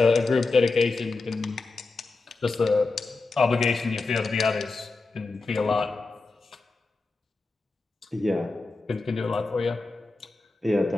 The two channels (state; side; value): quieter; right; 3.7 dB